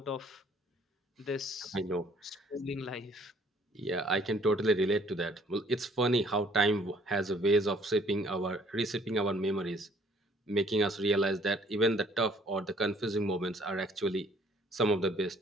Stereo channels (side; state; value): both; normal; correlation 0.60